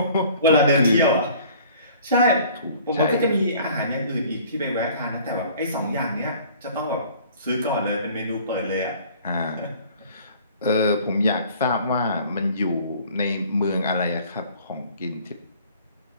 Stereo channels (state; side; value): inverted; both; correlation -0.51